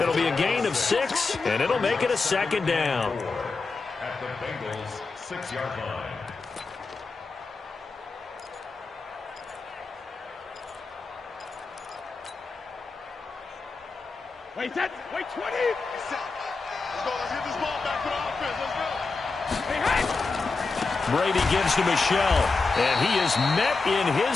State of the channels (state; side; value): quieter; right; 4.1 dB